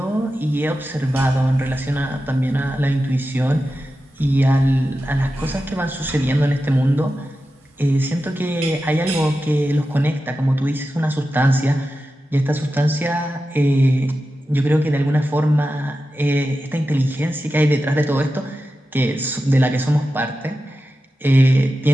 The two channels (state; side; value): normal; both; correlation 0.92